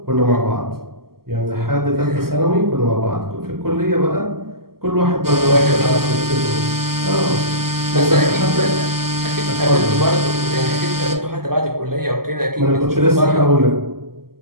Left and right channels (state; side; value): late; left; 0.93 ms